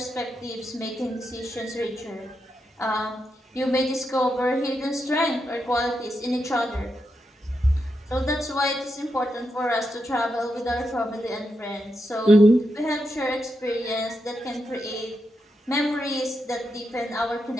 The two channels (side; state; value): both; normal; correlation 0.85